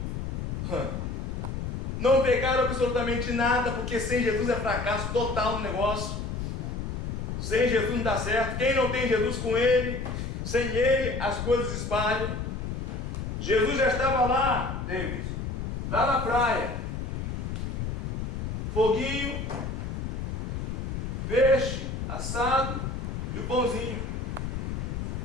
não pegaram absolutamente nada, porque sem Jesus é fracasso total no negócio. Sem Jesus não dá certo. Quem não tem Jesus com Ele, sem Ele as coisas espalham. Jesus já estava lá, David, lá na praia. Foguinho, peixe assado e o pãozinho.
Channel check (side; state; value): left; noise; rumble, 4 dB below the sound